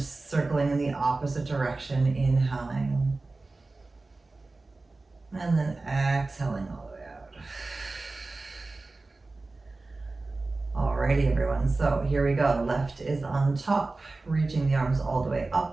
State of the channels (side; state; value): left; quieter; 3.4 dB